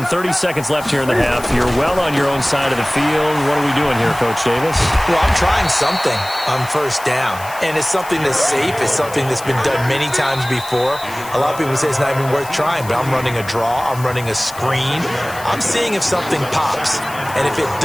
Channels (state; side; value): noise; left; hiss, 17 dB below the sound